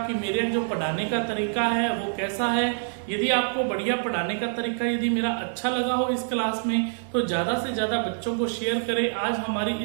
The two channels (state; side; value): silent; left; 59 dB below the other